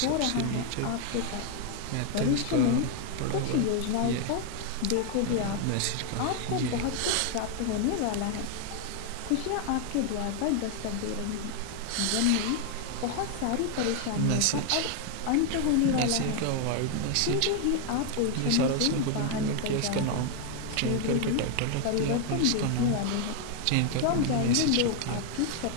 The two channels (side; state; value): both; different; correlation 0.00